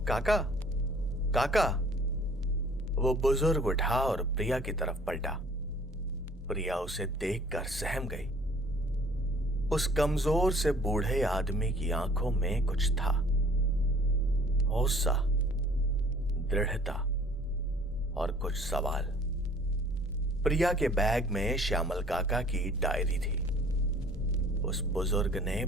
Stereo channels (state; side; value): normal; both; correlation 0.54